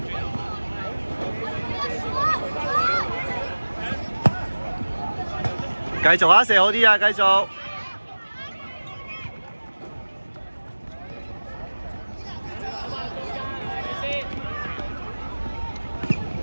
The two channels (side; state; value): both; inverted; correlation -1.00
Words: 繼續啊！射好啲啊！繼續。